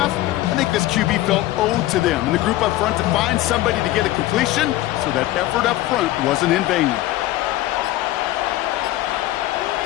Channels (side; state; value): right; quieter; 15.9 dB